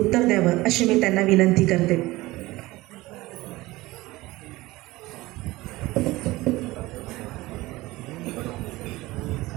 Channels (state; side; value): quieter; left; 19.5 dB